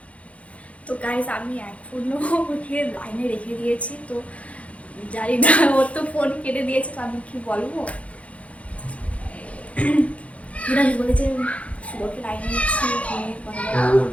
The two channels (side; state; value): right; late; 0.064 ms